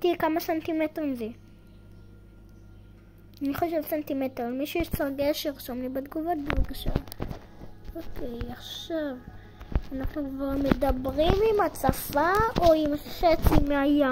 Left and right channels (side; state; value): both; identical; correlation 1.00